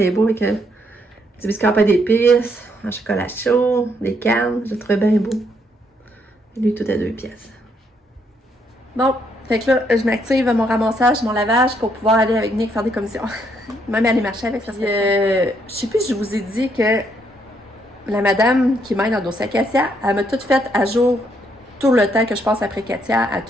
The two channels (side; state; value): both; normal; correlation 0.73